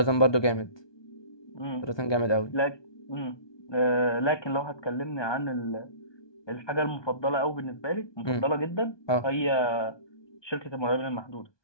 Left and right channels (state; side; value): late; right; 1.2 ms